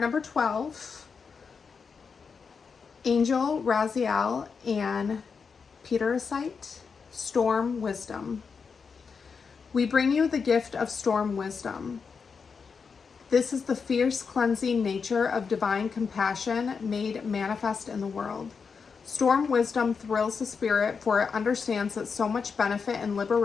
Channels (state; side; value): quieter; right; 5.6 dB